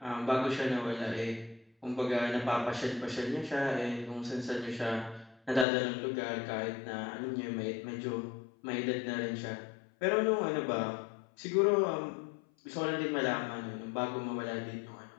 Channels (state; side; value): drops out; right; at 5.7 s